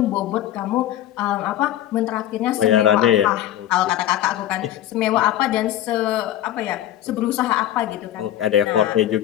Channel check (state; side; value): quieter; right; 12.5 dB